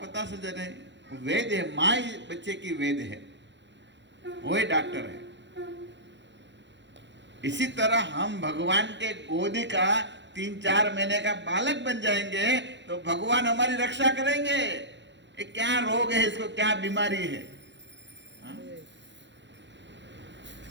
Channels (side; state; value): left; late; 0.52 ms